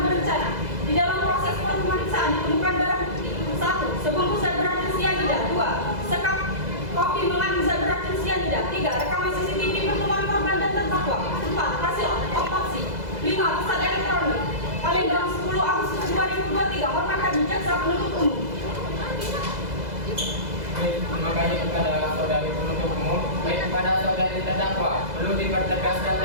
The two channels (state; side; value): late; left; 2.0 ms